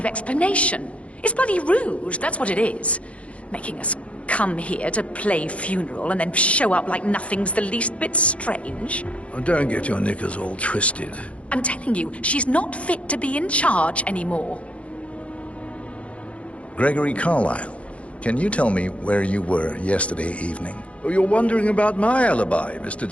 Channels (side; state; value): right; late; 0.063 ms